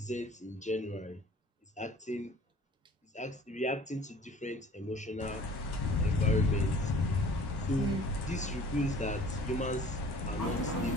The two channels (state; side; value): normal; both; correlation 0.48